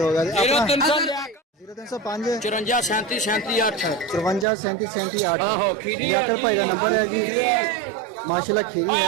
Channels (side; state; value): left; drops out; at 4.5 s